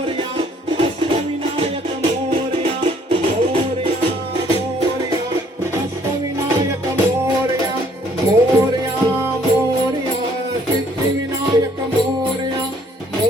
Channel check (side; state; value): both; normal; correlation 0.62